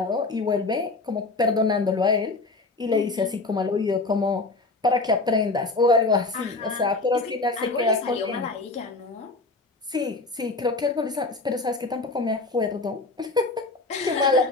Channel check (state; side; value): quieter; right; 3.4 dB